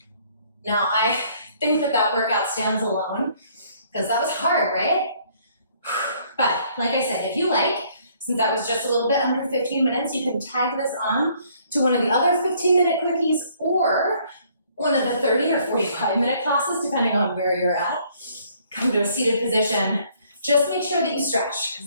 Now, I think that workout stands alone, because that was hard, right? But like I said, if you like, since that was just a little bit under 15 minutes, you can tag this on to one of the other 15-minute quickies or one of the 30 or 45-minute classes, depending on where you're at. Come to a seated position. Just make sure that you stretch,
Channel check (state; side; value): inverted; both; correlation -0.63